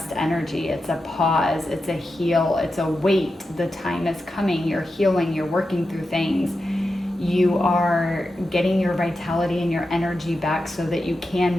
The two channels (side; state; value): both; normal; correlation 0.90